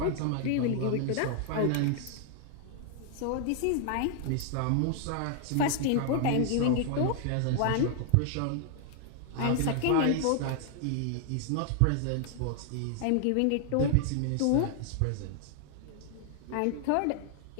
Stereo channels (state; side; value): different; both; correlation -0.01